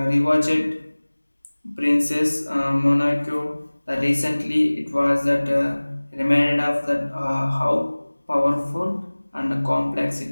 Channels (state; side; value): inverted; both; correlation -1.00